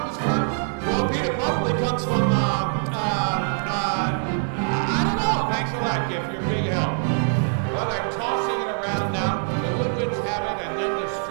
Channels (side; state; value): left; silent; 63 dB below the other